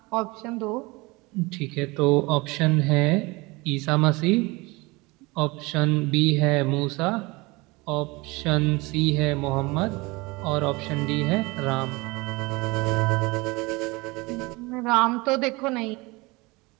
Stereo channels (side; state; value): left; quieter; 24.1 dB